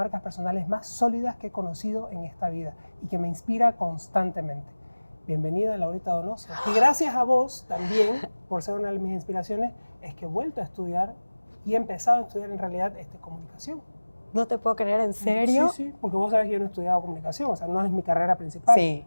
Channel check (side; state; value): both; inverted; correlation -1.00